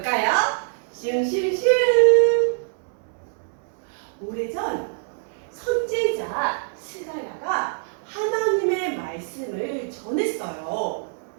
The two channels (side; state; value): left; silent; 62 dB below the other